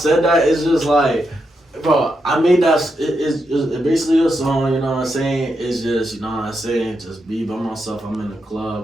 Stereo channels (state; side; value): normal; both; correlation 0.84